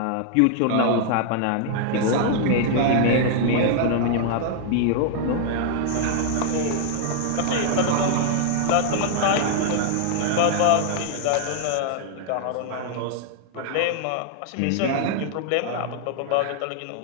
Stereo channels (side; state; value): both; different; correlation 0.00